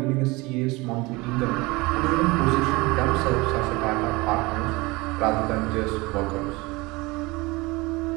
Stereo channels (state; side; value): quieter; left; 23.5 dB